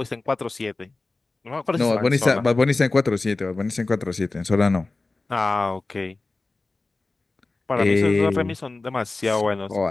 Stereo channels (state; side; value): quieter; right; 3.4 dB